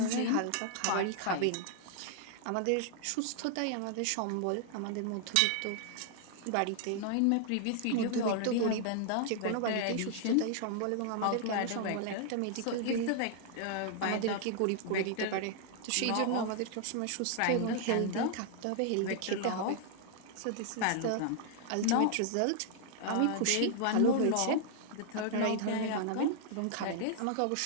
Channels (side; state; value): both; different; correlation 0.00